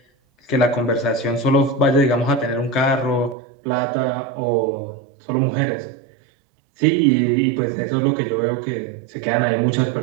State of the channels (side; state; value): left; drops out; at 3.4 s